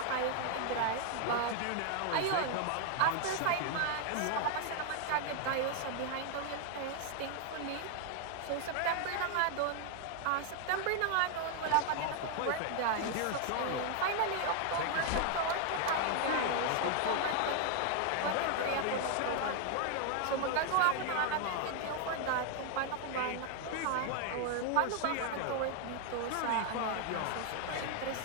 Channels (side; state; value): both; different; correlation 0.00